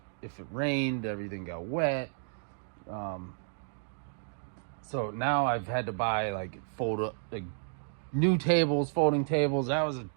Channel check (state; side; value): silent; left; digital silence